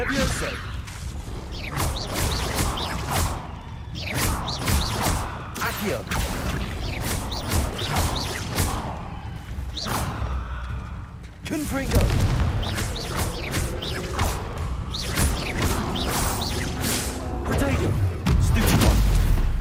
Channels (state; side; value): identical; both; correlation 1.00